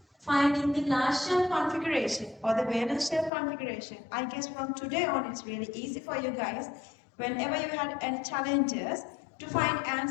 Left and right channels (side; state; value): right; drops out; at 3.3 s